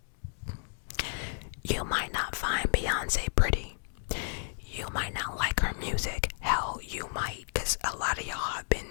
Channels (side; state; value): right; silent; digital silence